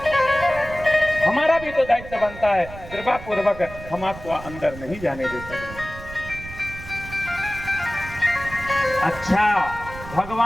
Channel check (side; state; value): right; noise; rumble, 14 dB below the sound